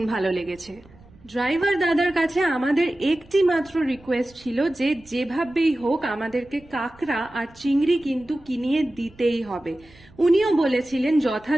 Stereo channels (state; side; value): noise; right; rumble, 26 dB below the sound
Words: ভালো লেগেছে। ড্রাইভার দাদার কাছে আমাদের একটি মাত্র রিকোয়েস্ট ছিল যে যেভাবেই হোক আমাদেরকে কাঁকড়া আর চিংড়ি কিন্তু কিনিয়ে দিতেই হবে। উনিও বলেছিলেন